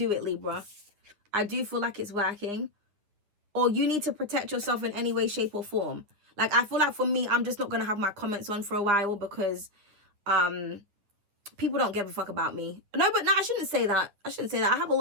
it, Libra. I do feel like it's working. Or you need to protect yourself in any way, shape, or form. Like, I feel like for me, I'm just not going to have my comments on for a while because people don't give a fuck about me. No, but no, I shouldn't say that. I shouldn't say that. I have a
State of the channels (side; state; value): left; late; 9.8 ms